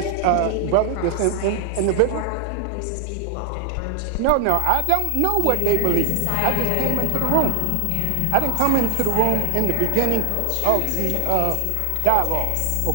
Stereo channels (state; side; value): different; both; correlation 0.00